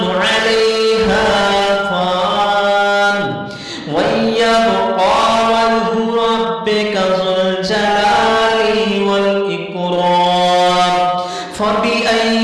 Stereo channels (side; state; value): both; identical; correlation 1.00